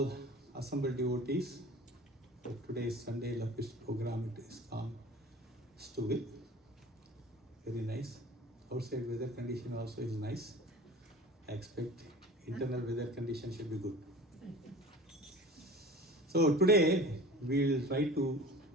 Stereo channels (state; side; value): normal; both; correlation 0.40